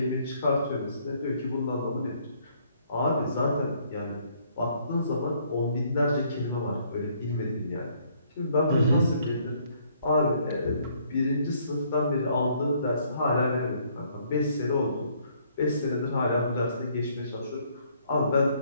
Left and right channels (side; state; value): both; inverted; correlation -0.65